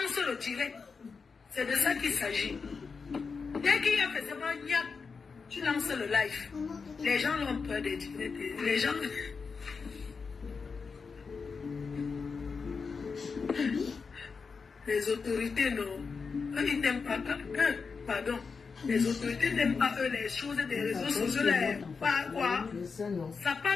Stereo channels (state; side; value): quieter; right; 5.1 dB